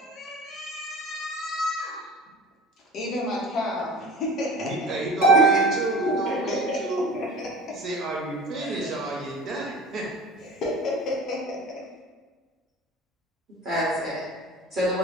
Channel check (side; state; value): both; normal; correlation 0.37